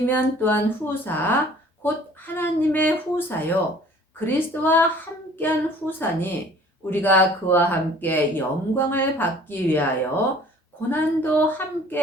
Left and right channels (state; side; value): normal; both; correlation 0.52